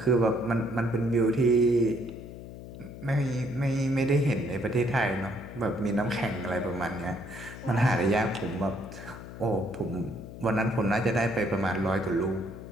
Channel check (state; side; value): noise; left; hum, 13 dB below the sound